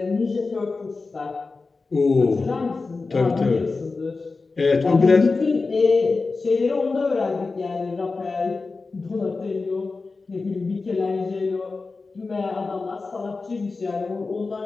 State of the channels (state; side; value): quieter; right; 4.0 dB